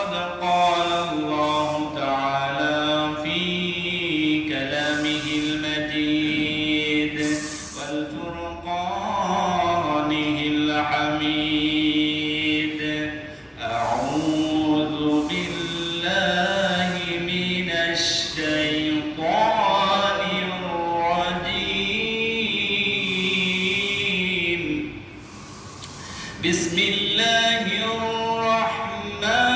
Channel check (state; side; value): identical; both; correlation 1.00